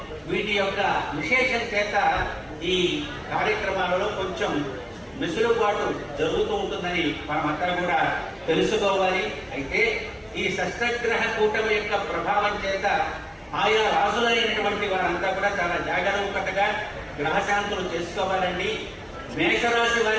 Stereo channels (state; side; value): identical; both; correlation 1.00